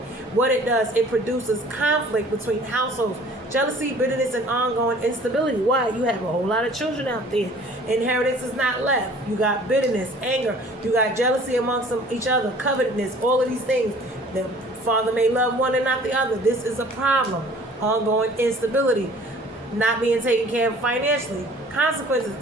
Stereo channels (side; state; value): both; normal; correlation 0.51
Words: What it does, it produces conflict between households, jealousy, bitterness, and ongoing instability. Why? You have a whole lot of children out there. Inheritance is not left. You got bitterness, anger. You got jealousy amongst each other, covetousness, all of these things. The father may love one and not the other. This is a problem. Ongoing instability. Not being taken care of financially. Consequences,